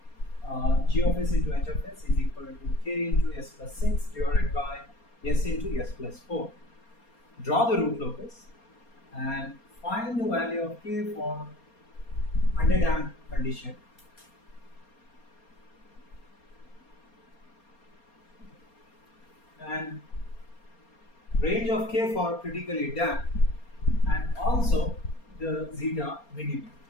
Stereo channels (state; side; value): late; right; 4.3 ms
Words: g of s into h of s is equal to k into s plus 6 divided by s into s plus 4. Draw the root locus and find the value of k for underdamped condition. And range of k for critically damped, and also the zeta minimum.